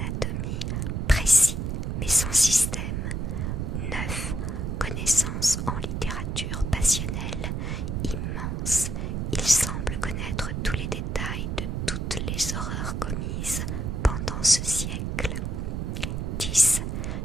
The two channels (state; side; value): noise; right; rumble, 2 dB below the sound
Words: précis mais sans système. 9. Connaissances en littérature passionnelle, immense. Il semble connaître tous les détails de toutes les horreurs commises pendant ce siècle. 10.